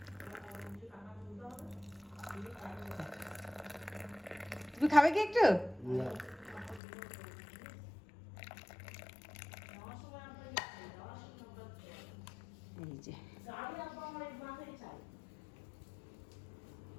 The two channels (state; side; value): drops out; right; at 6.8 s